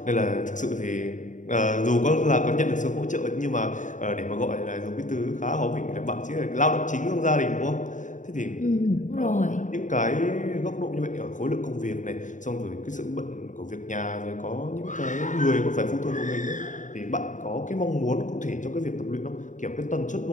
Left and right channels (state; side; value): late; right; 0.36 ms